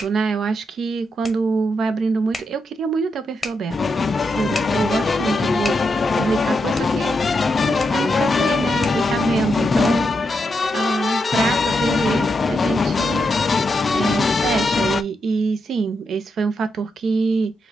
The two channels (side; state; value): both; normal; correlation 0.84